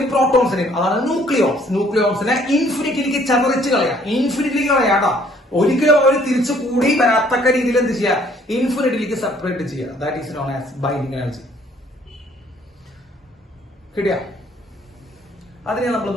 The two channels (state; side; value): normal; both; correlation 0.61